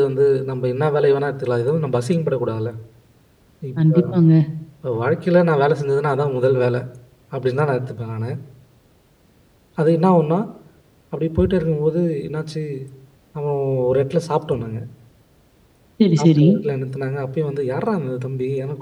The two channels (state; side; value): identical; both; correlation 1.00